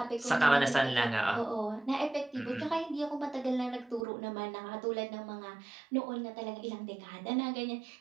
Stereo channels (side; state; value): left; drops out; at 4.0 s